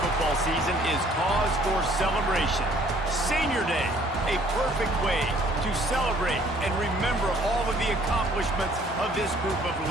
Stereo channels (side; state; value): both; normal; correlation 0.59